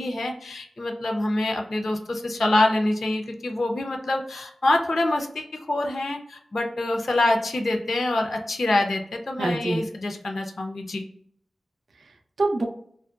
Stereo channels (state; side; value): normal; both; correlation 0.94